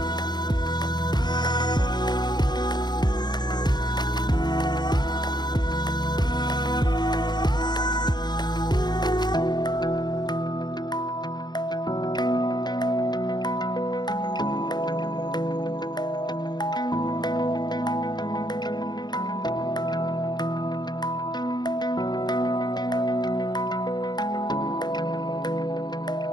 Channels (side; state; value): right; late; 0.21 ms